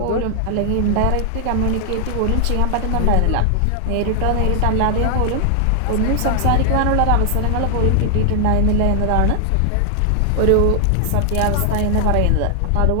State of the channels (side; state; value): both; different; correlation 0.00